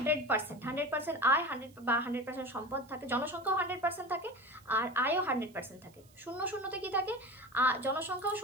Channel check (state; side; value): noise; right; hiss, 28 dB below the sound